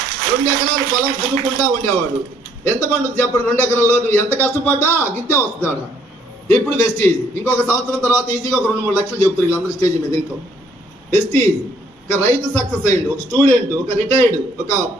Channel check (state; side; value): normal; both; correlation 0.65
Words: 2 ఎకరాలు పొలం దున్నుకుంటా ఉండేవాడు. ఎంత పండుగ చెప్పండి? 2 ఎకరాల్లో నువ్వు ఎంత కష్టపడ్డా గిట్టే వస్తాడా? ఇప్పుడు వెస్టీజ్. ఇంకొక సంవత్సరం తర్వాత ఈజీగా ఒక 2-3 లక్షలు చెప్తారు వీళ్ళందరూ స్టేజ్ మీద. ఇంకో వెస్టీజ్ ఒక రైతు సక్సెస్ అయ్యిండు, ఒక స్టూడెంట్, ఒక రిటైర్డ్, ఒక